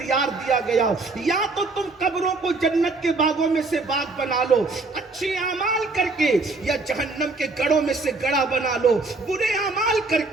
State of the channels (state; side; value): quieter; left; 3.6 dB